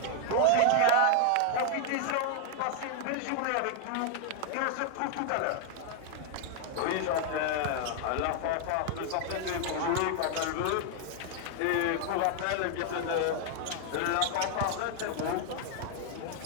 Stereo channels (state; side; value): different; both; correlation 0.00